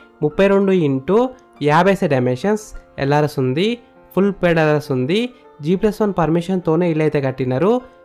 32 x 50 డైమెన్షన్స్, ఎల్ఆర్ఎస్ ఉంది, ఫుల్ పేడ్ ఎల్ఆర్ఎస్ ఉంది. G+1 పర్మిషన్తోనే ఇల్లు అయితే కట్టినారు.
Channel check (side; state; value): both; identical; correlation 1.00